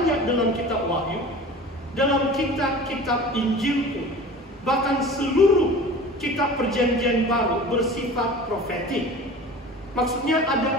dalam kitab Wahyu, dalam kitab-kitab Injil pun, bahkan seluruh kitab Perjanjian Baru bersifat profetik. Maksudnya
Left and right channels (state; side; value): normal; both; correlation 0.39